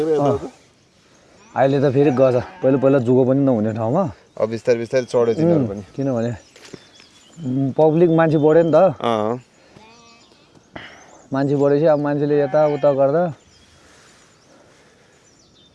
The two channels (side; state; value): both; identical; correlation 1.00